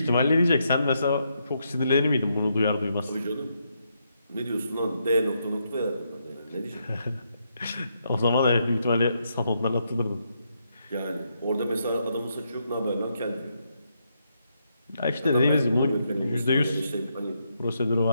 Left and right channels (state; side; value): inverted; both; correlation -0.79